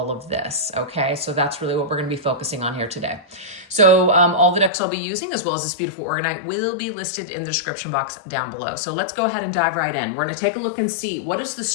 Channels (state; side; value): drops out; right; at 4.7 s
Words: of this. Okay, so that's really what we're going to be focusing on here today. So all the decks I'll be using, as well as this beautiful orgonite, will be listed in the description box down below. So let's go ahead and dive right in. We're going to take a look and see what is the